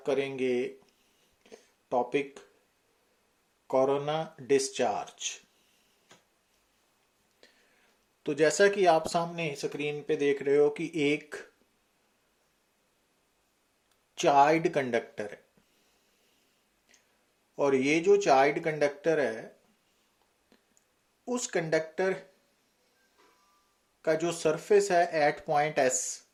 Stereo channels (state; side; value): identical; both; correlation 1.00